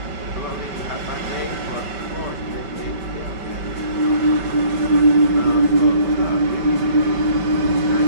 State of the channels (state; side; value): late; left; 5.2 ms